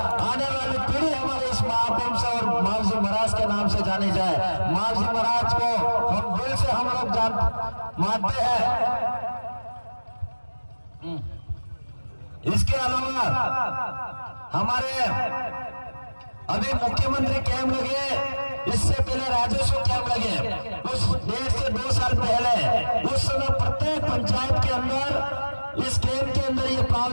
आने वाली पीढ़ी हमारे इस महाकुंभ से और महर्षि महाराज के नाम से जानी जाए। महर्षि महाराज को हम दिल से हम लोग मानते हैं। इसके अलावा हमारे अभी मुख्यमंत्री कैंप लगे, इससे पहले राजस्व कैंप लगे, उस 1.5 से 2 साल पहले उस समय प्रत्येक पंचायत के अंदर इस कैंप के अंदर ये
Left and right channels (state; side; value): inverted; both; correlation -1.00